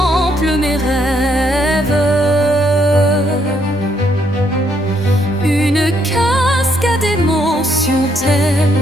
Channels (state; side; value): normal; both; correlation 0.72